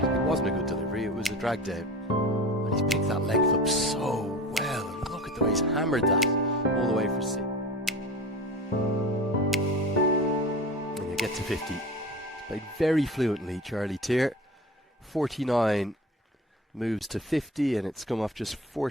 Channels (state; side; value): normal; both; correlation 0.34